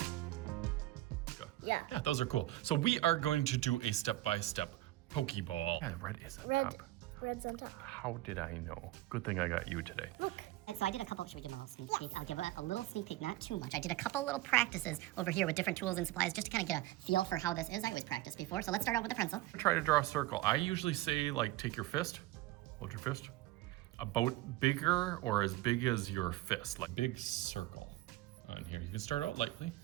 Yeah, those are cool. So we are going to do a step-by-step Pokéball. Yeah, red is on top. Red's on top. How did I know? Good thing I got you today. Look. So I did a couple, should we give them a little sneak peek? I'll give a little sneak peek, not too much. I did a couple little practices over here with different tools and supplies just to kind of get a feel for how this is. I always practiced before, so let's start out with the pencil. Try to draw a circle. I usually say, like, take your fist, hold your fist, about bigger or as big as your fist, like big circle on here. You can start out lightly.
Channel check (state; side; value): quieter; left; 16.6 dB